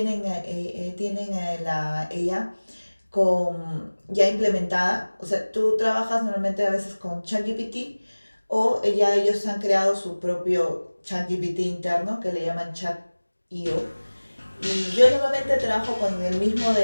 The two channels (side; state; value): both; inverted; correlation -1.00